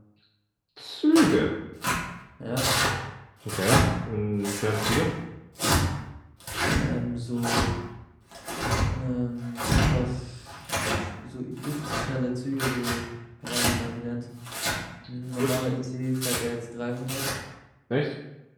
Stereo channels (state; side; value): identical; both; correlation 1.00